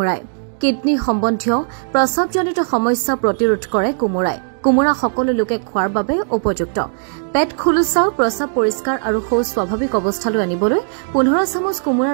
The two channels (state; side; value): silent; left; digital silence